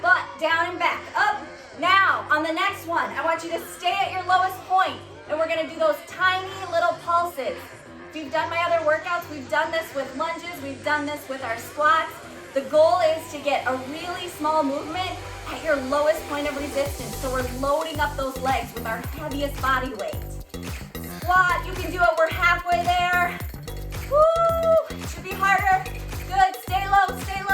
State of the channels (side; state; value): both; identical; correlation 1.00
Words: butt, down and back, up. Now, on the next one, I want you to stay at your lowest point, and we're gonna do those tiny little pulses. If you've done my other workouts, we've done this with lunges, we've done this with our squats. The goal is to get a really small movement at your lowest point of resistance, so we're loading up those legs with our heaviest body weight. Squat, you can do it, we're halfway there. Woo! Should be harder. Good, stay low, stay